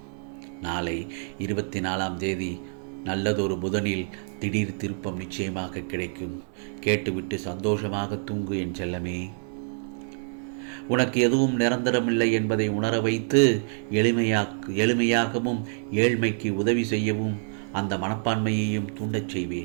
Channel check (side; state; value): left; silent; digital silence